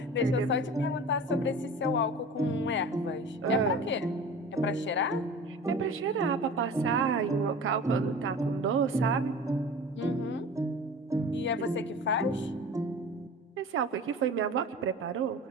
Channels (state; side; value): normal; both; correlation 0.37